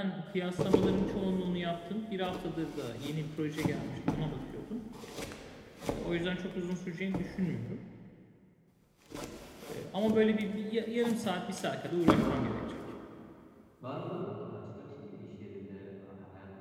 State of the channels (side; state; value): both; identical; correlation 1.00